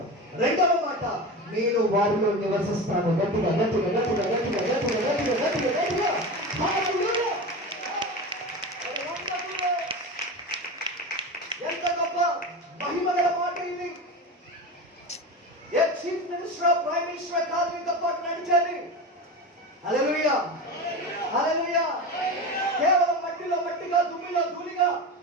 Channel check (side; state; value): both; normal; correlation 0.26